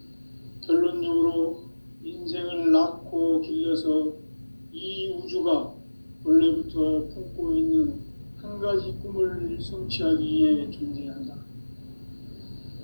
결론적으로 인생을 낳고 길러서 이 우주가 원래부터 품고 있는 한 가지 꿈을 성취하기 위해 존재한다.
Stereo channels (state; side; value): inverted; both; correlation -1.00